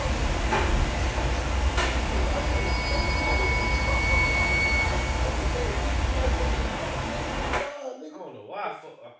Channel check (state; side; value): identical; both; correlation 1.00